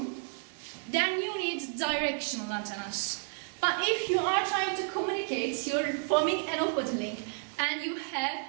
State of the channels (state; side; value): silent; left; 57 dB below the other